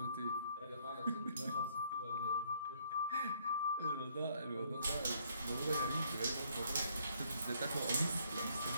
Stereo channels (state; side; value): inverted; both; correlation -0.67